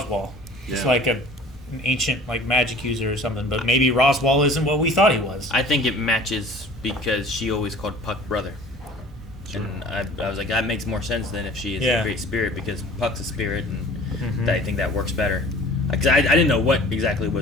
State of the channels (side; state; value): both; normal; correlation 0.46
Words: Just Yeah. like an ancient like magic user or something, but maybe Roswell isn't what we thought he was. I think it matches because she always called Puck brother. And I was like, that makes more sense than if she is Yeah. a great spirit because Puck's a spirit, and I think that works better. Because I didn't know what exactly